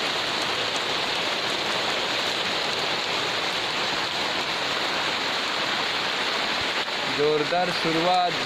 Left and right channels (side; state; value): both; identical; correlation 1.00